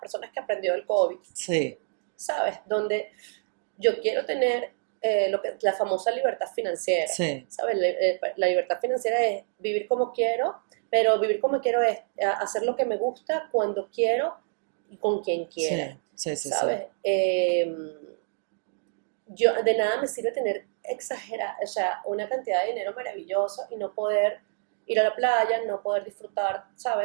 personas que aprendió del COVID. Sí. ¿Sabes? Donde yo quiero tener la famosa libertad financiera. Sí. ¿Sabes? La libertad financiera es vivir como quiero, pero vivir como quiero es hacer lo que me gusta, cuando quiero y con quien quiera. Sí, ¿sabes? Sí. Yo, de nada me sirve tener una cantidad de dinero maravillosa y no poder ir a la playa, no poder disfrutar,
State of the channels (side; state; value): left; silent; 60 dB below the other